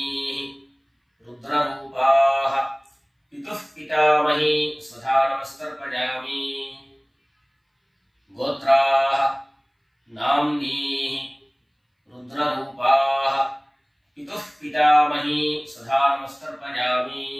பிரபிதாமஹி சதா நமஸ்தர்ப்பயாமி.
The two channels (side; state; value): both; identical; correlation 1.00